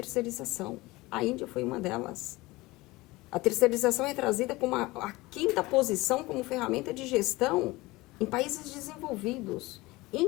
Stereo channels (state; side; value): quieter; right; 20.9 dB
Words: A Índia foi uma delas. A terceirização é trazida como a quinta posição como ferramenta de gestão em países desenvolvidos.